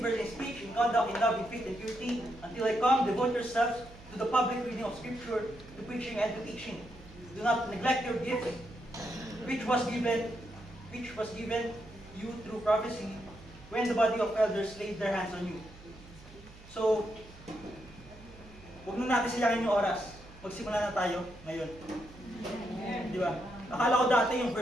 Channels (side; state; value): right; noise; hum, 20 dB below the sound